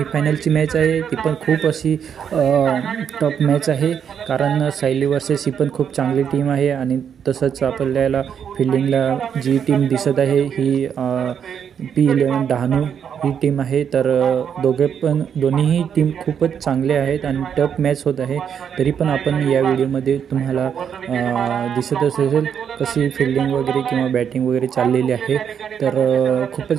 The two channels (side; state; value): left; quieter; 8.0 dB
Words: मॅच आहे। ती पण खूप अशी टॉप मॅच आहे, कारण सायली वर्सेस ही पण खूप चांगली टीम आहे। आणि तसंच आपल्याला फिल्डिंगला जी टीम दिसत आहे ही P11 डहाणू ही टीम आहे। तर दोन्हीही टीम खूपच चांगले आहेत आणि टफ मॅच होत आहे। तरी पण आपण या व्हिडिओमध्ये तुम्हाला दिसत असेल कशी फिल्डिंग वगैरे किंवा बॅटिंग वगैरे चाललेली आहे। तर